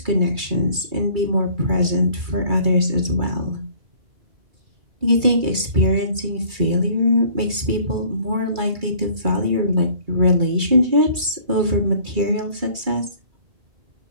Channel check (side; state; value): left; late; 2.3 ms